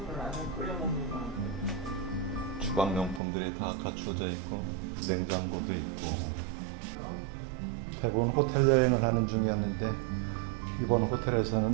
주방용품들이 다 갖춰져 있고 냉장고도 있고 대부분 호텔 여행을 하는 중이었는데 이번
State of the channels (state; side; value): drops out; left; at 3.2 s